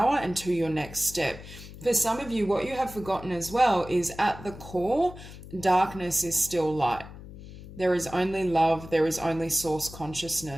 and to your next step. For some of you, what you have forgotten as well is, at the core, darkness is still light. There is only love, there is only source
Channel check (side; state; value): left; noise; hum, 15 dB below the sound